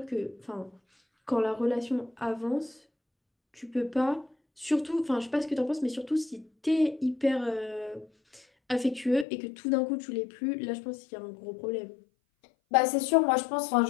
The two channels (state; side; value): drops out; right; at 9.2 s